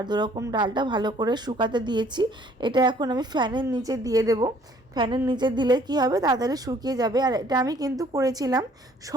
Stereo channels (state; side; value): normal; both; correlation 0.59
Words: দুরকম ডালটা ভালো করে শুকাতে দিয়েছি। এটা এখন আমি ফ্যানের নিচে দিয়ে দেবো। ফ্যানের নিচে দিলে কি হবে, তাড়াতাড়ি শুকিয়ে যাবে। আর এটা আমি কিন্তু করেছিলাম